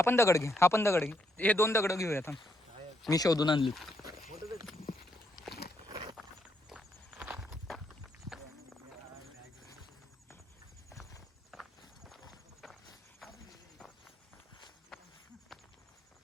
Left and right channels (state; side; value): normal; both; correlation 0.77